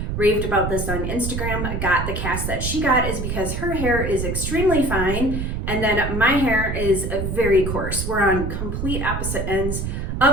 raved about this on Instagram got the cast that she got, is because her hair is extremely fine and then my hair is very coarse. We're on complete opposite ends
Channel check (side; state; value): right; noise; rumble, 3 dB below the sound